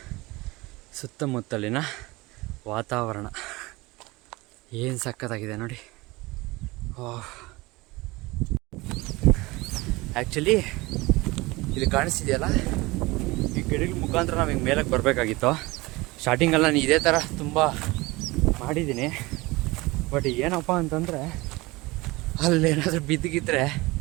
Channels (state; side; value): quieter; left; 22.1 dB